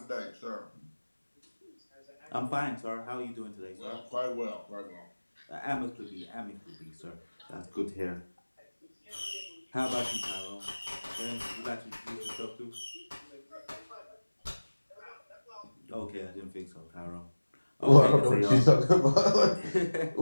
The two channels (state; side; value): inverted; both; correlation -1.00